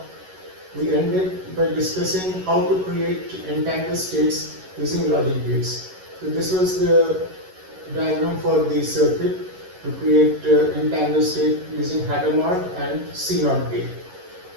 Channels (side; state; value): left; late; 11 ms